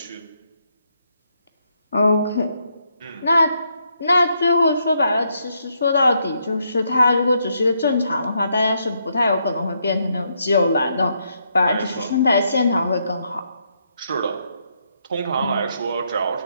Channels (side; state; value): both; inverted; correlation -0.77